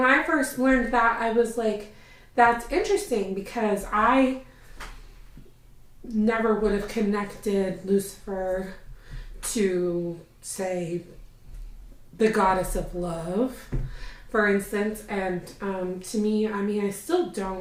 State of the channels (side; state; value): both; identical; correlation 1.00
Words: I first learned that, I was like, that's interesting, because I never would have connected Lucifer to, say, the goddess of love, for instance. And to me, I mean, I still